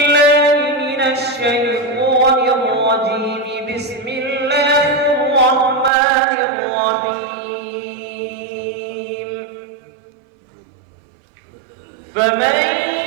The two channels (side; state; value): left; drops out; at 5.9 s